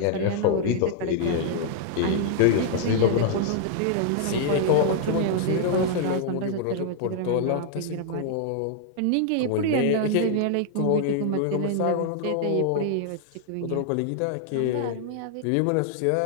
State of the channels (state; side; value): different; both; correlation -0.01